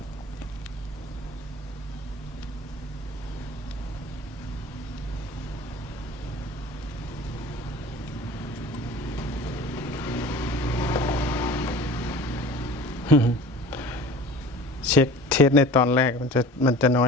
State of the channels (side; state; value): both; normal; correlation 0.41